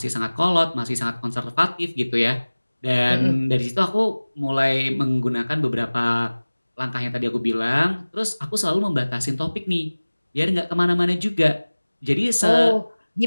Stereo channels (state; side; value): inverted; both; correlation -1.00